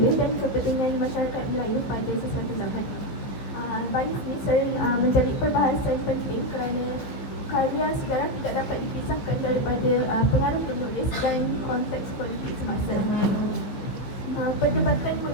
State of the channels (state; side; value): late; right; 15 ms